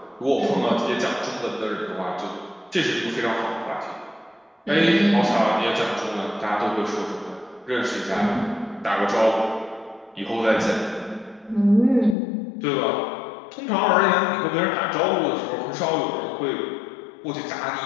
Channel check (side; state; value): right; drops out; at 12.2 s